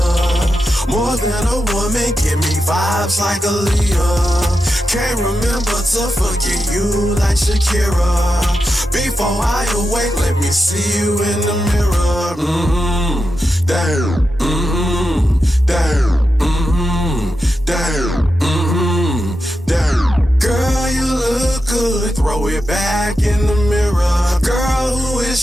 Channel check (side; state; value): both; normal; correlation 0.89